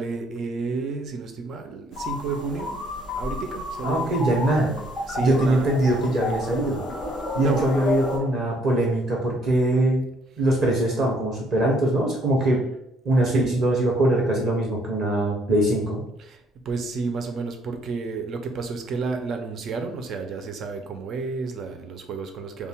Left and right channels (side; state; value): both; normal; correlation 0.66